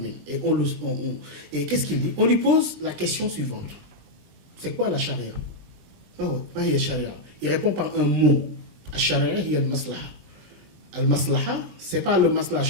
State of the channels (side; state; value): left; late; 20 ms